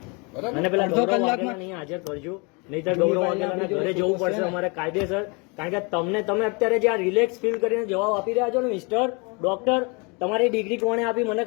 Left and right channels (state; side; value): quieter; right; 30.7 dB